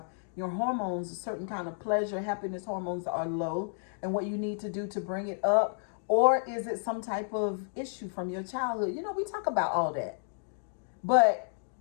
your hormones, a certain kind of pleasure, happiness hormones are low, and what you need to do to bring it up, or is it some type of issue from your childhood? We talk about all that. But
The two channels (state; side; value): silent; right; digital silence